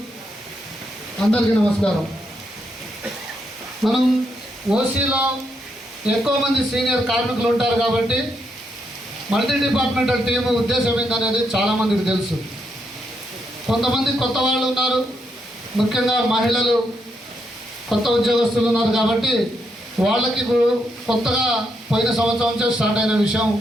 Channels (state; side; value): normal; both; correlation 0.80